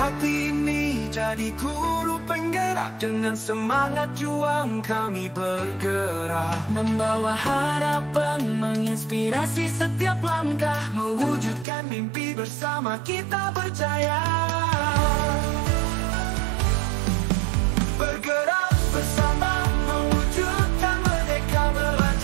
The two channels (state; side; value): drops out; left; at 11.7 s